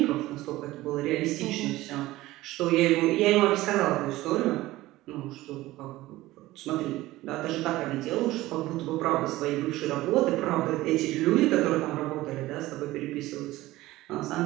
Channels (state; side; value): quieter; left; 17.4 dB